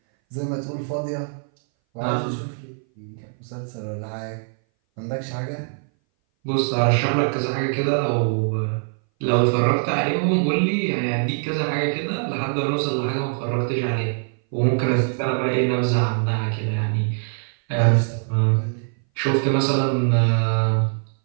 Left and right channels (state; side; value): silent; left; 59 dB below the other